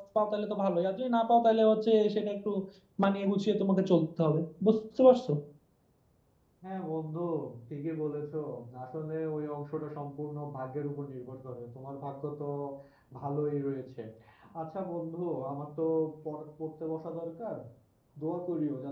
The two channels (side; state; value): both; identical; correlation 1.00